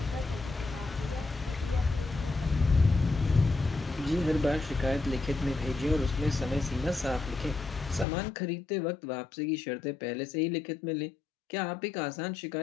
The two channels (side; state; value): right; drops out; at 8.1 s